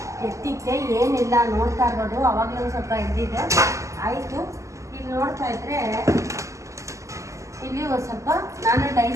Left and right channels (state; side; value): late; left; 0.15 ms